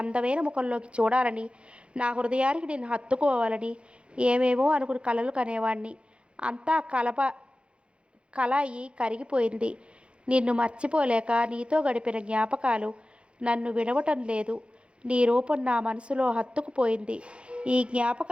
ముఖంలోకి చూడాలని, నా హృదయానికి నేను హత్తుకోవాలని ఏమేమో అనుకుని కలలు కనేవాణ్ణి. అంతా కళాయి కరిగిపోయింది. నిన్ను మర్చిపోలేక నీతో గడిపిన జ్ఞాపకాలు నన్ను విడవటం లేదు. నీ రూపం నా మనసులో హత్తుకుపోయింది. ఈ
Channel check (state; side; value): late; left; 0.058 ms